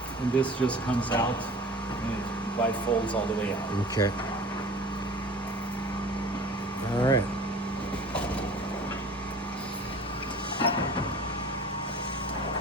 And this just comes out and it bifolds all the way out. Okay.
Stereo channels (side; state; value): both; normal; correlation 0.42